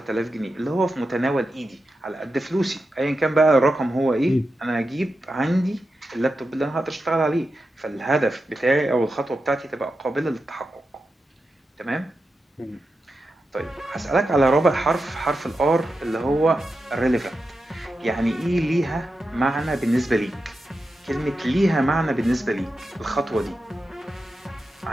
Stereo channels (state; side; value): normal; both; correlation 0.90